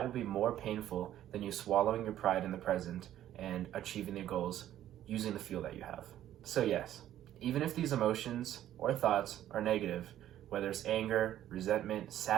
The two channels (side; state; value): left; quieter; 12.2 dB